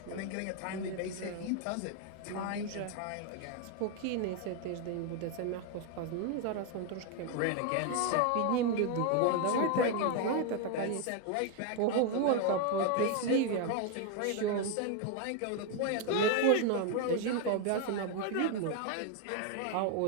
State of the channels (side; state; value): both; different; correlation 0.01